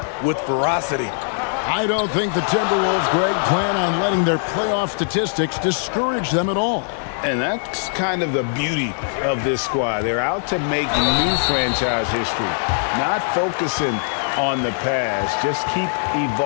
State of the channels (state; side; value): silent; right; 64 dB below the other